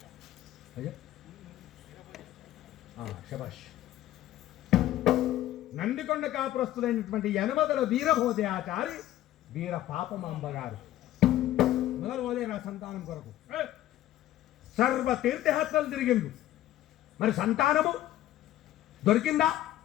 శబాష్. నందికొండ కాపురస్తులైనటువంటి యనమదల వీరభోజయాచారి వీర పాపమాంబ గారు మొదలు పోలేరు ఆ సంతానం కొరకు. సర్వ తీర్థయాత్రలు తిరిగిండు, మరి సంతానము దొరికిందా?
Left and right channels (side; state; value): right; quieter; 13.7 dB